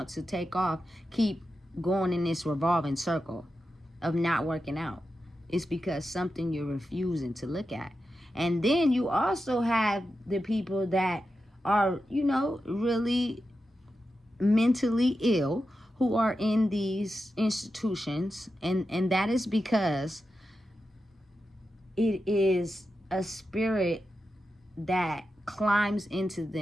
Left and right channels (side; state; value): both; normal; correlation 0.90